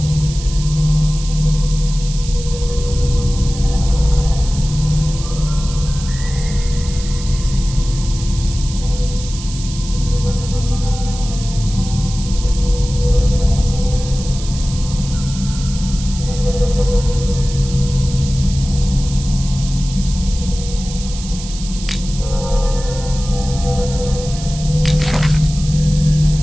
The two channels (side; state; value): right; noise; hiss, 12 dB below the sound